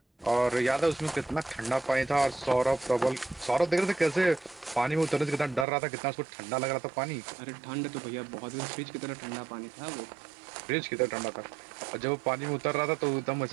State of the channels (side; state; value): left; drops out; at 5.7 s